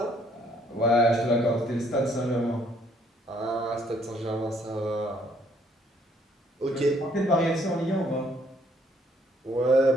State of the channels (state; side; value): normal; both; correlation 0.65